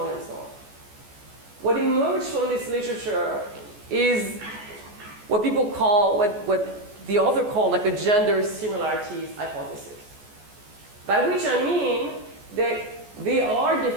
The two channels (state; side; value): late; left; 14 ms